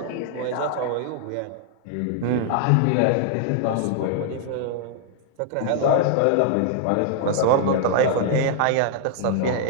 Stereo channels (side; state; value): both; different; correlation -0.01